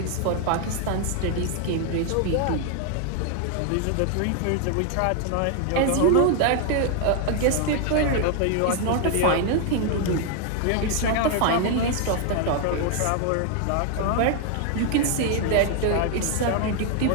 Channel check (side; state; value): both; different; correlation 0.00